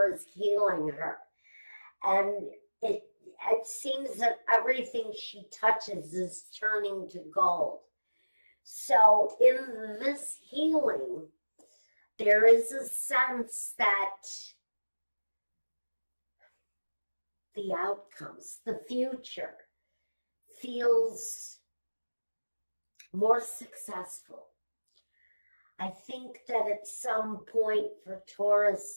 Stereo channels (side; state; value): both; inverted; correlation -1.00